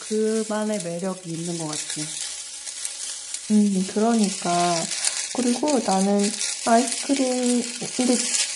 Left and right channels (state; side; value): identical; both; correlation 1.00